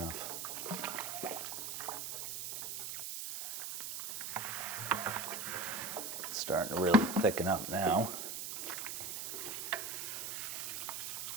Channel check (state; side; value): noise; right; hiss, 4 dB below the sound